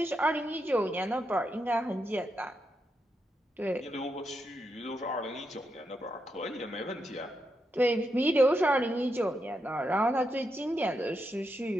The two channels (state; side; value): normal; both; correlation 0.84